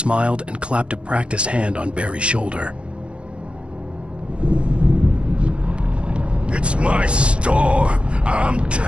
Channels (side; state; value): left; late; 0.058 ms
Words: and clapped a practiced hand on Barry's shoulder. It's my store. I'm